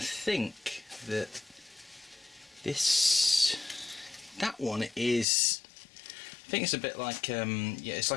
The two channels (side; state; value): right; drops out; at 5.2 s